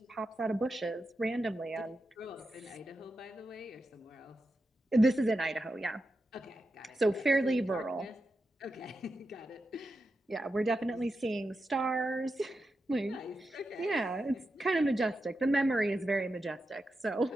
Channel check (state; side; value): normal; both; correlation 0.89